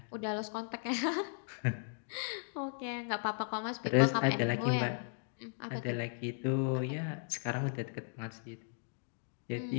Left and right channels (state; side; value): silent; right; digital silence